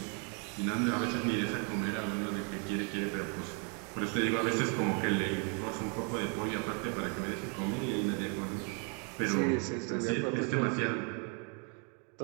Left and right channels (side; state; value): left; quieter; 38.3 dB